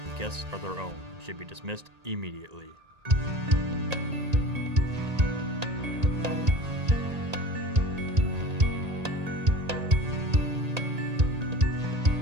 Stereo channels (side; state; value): left; late; 1.8 ms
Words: guests are their own and should be dismissed immediately.